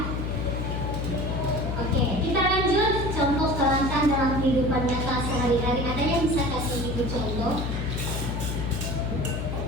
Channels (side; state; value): left; noise; hum, 2 dB below the sound